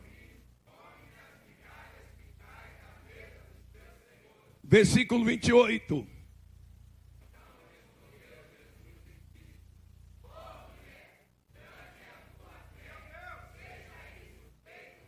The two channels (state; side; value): identical; both; correlation 1.00